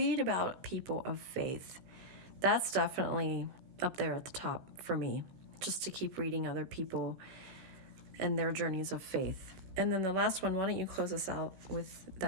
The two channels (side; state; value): left; late; 16 ms